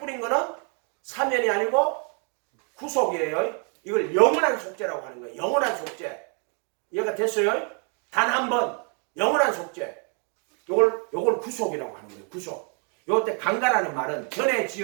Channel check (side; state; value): left; quieter; 38.6 dB